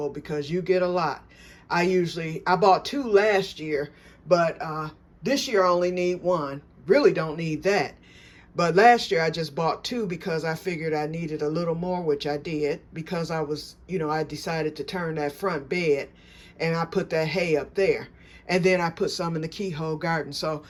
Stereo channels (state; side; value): identical; both; correlation 1.00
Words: because you get a lot. I bought 2 last year, but this year I only need 1. Really don't need that. But last year I just bought 2 because I figured I needed a little more, which I did, because I decided to turn that front bed and I put that hay up there. And then I put some in the keyhole garden. So